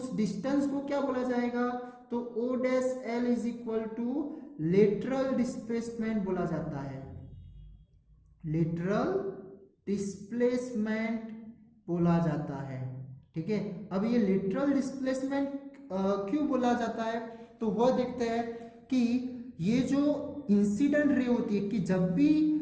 डिस्टेंस को क्या बोला जाएगा, तो O' L is equal to lateral displacement बोला जाता है। लेटरल डिस्प्लेसमेंट बोला जाता है, ठीक है। अब ये लेटरल डिस्प्लेसमेंट क्यों बोला जाता है, तो वह देखते हैं कि ये जो इंसिडेंट रे होती है, कि जब भी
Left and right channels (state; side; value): identical; both; correlation 1.00